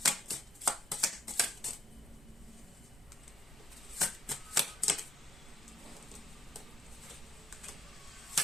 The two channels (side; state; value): both; normal; correlation 0.74